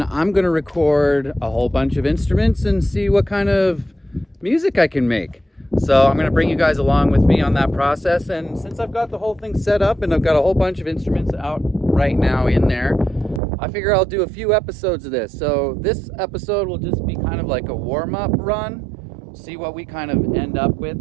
I'm going to record a whole bunch of instruments and see what kind of music I can make. So I'm going to bring you guys along with me on that process. And since I've got the whole thing set up and I've got a whole bunch of instruments out right now in there, I figure I'll do a few episodes of this. So this episode will just be kind of like a warm-up run. See what we kind of end up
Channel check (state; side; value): drops out; left; at 13.4 s